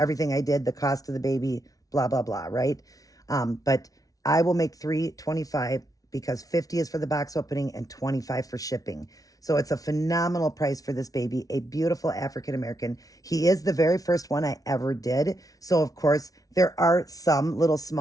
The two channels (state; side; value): late; right; 0.18 ms